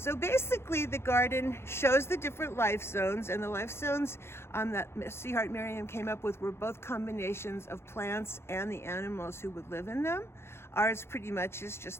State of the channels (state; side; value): late; right; 0.12 ms